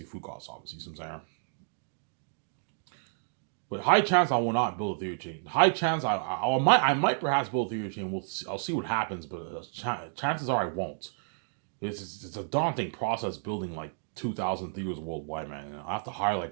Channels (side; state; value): left; silent; digital silence